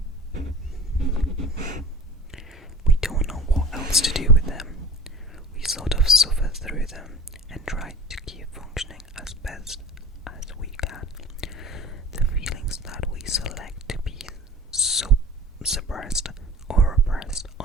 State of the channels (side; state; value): both; normal; correlation 0.41